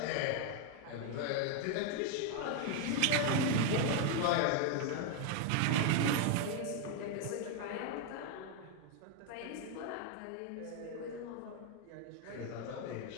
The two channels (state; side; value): different; both; correlation 0.00